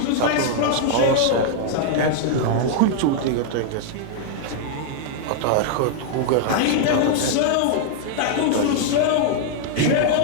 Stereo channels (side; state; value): both; different; correlation -0.01